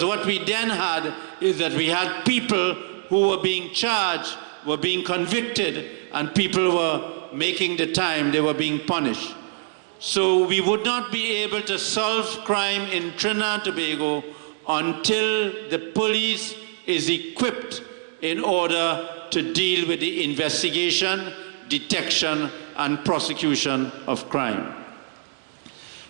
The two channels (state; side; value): silent; left; 62 dB below the other